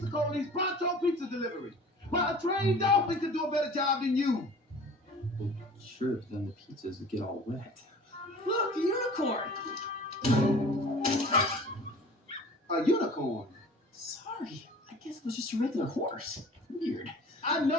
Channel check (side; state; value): both; normal; correlation 0.44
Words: Coley's Pronto Pizza Delivery. But a trained dolphin could do a better job than you. Well, sure, but then the pizzas would get all wet. Look, the unicorn. A unicorn? Sorry, I guess it was just a regular horse. Weird. I